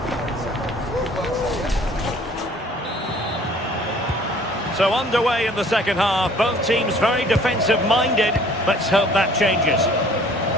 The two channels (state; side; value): normal; both; correlation 0.54